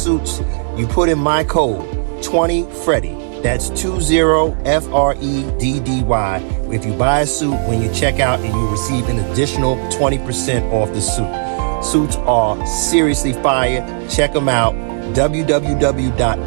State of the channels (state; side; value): silent; left; digital silence